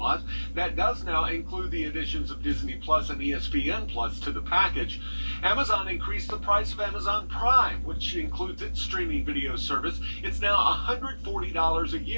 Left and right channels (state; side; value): inverted; both; correlation -1.00